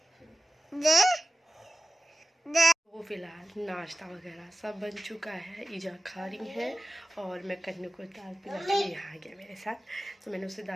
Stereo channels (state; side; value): normal; both; correlation 0.95